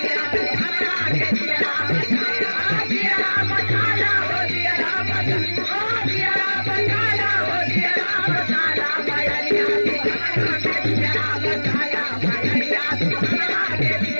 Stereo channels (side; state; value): both; inverted; correlation -1.00